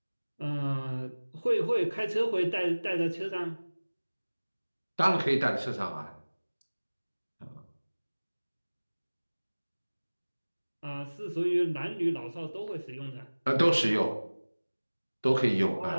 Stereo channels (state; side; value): inverted; both; correlation -1.00